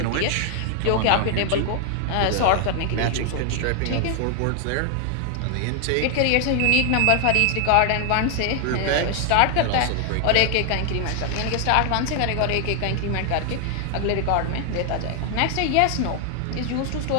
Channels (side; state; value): both; different; correlation 0.00